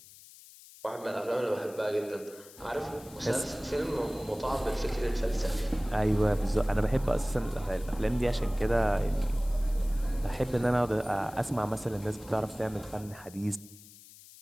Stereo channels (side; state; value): left; noise; hiss, 20 dB below the sound